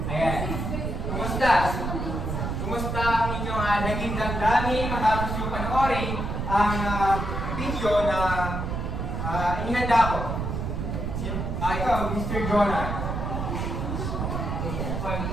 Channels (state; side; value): noise; right; rumble, 2 dB below the sound